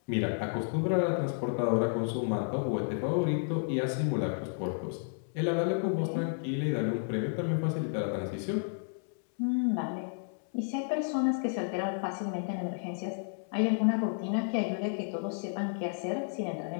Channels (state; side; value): silent; right; 57 dB below the other